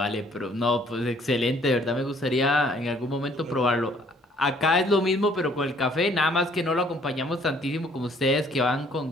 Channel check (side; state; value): both; normal; correlation 0.61